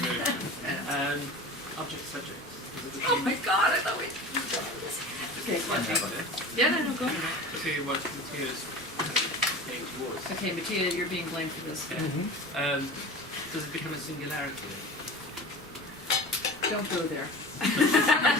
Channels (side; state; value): both; normal; correlation 0.35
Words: Object subject. Oh my god, I thought we... Okay, yeah, no, go ahead. To what Matthias saying towards. Okay, Mattia, you're being blamed for this. Does it become a singularity? Don't go there.